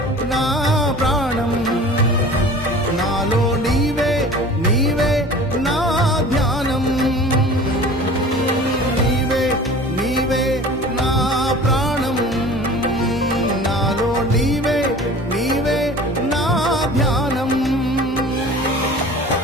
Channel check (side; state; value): both; normal; correlation 0.42